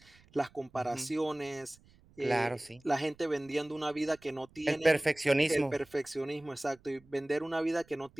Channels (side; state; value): right; noise; rumble, 28 dB below the sound